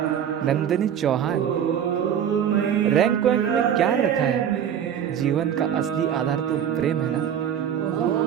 Nandini Chauhan, rank वैंक में क्या रखा है? जीवन का असली आधार तो प्रेम है ना।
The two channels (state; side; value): quieter; left; 9.1 dB